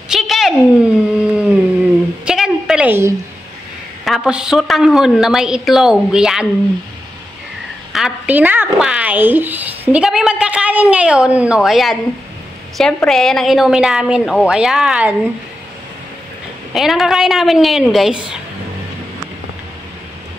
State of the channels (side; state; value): both; normal; correlation 0.89